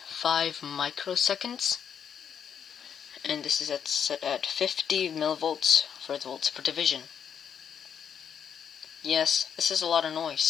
And this is set at 50 millivolts for the volts per division. Yes, this is a lot of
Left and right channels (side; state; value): right; quieter; 7.9 dB